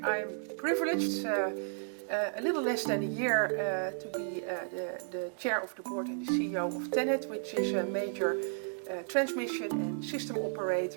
I'm privileged a little less than a year to be the chair of the board and the CEO of TenneT, which is a major transmission and system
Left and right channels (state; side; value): silent; left; digital silence